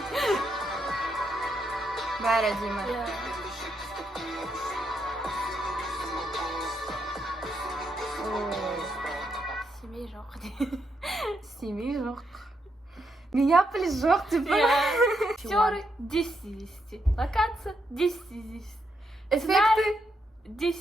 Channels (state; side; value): normal; both; correlation 0.80